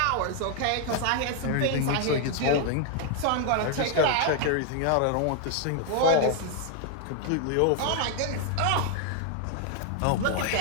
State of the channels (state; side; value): different; both; correlation 0.00